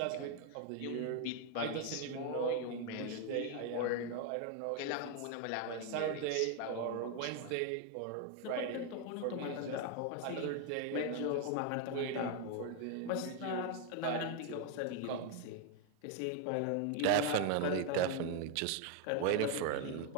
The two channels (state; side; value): different; both; correlation 0.01